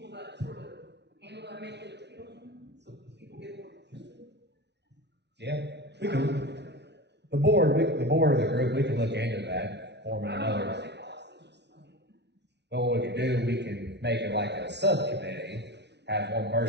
people that sort of handle that, make it appeal, so people get more interested. Yeah, we can, the board of the group, we can look into that, forming another. But what we can do, we can make it like a subcommittee, have one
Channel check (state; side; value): late; left; 0.50 ms